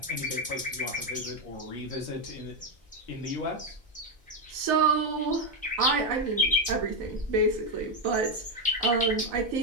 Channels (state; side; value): normal; both; correlation 0.06